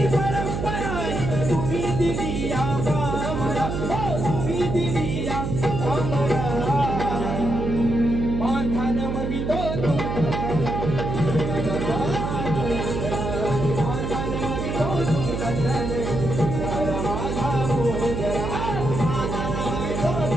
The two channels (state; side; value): noise; right; hum, 3 dB below the sound